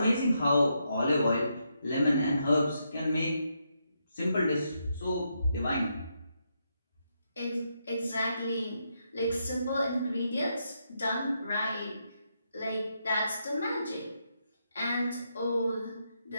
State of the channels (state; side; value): inverted; both; correlation -0.81